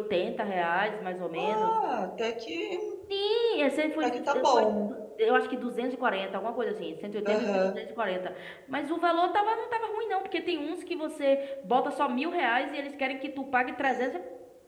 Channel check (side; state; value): both; identical; correlation 1.00